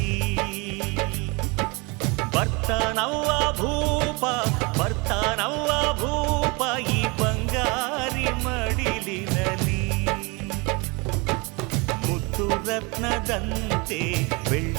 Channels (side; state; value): left; quieter; 28.1 dB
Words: ಬರ್ತಾನವ್ವ ಭೂಪ ಬರ್ತಾನವ್ವ ಭೂಪ ಈ ಬಂಗಾರಿ ಮಡಿಲಿನಲಿ ಮುತ್ತು ರತ್ನದಂತೆ